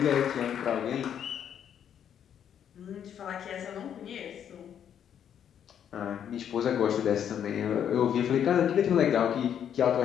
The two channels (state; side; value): quieter; right; 9.1 dB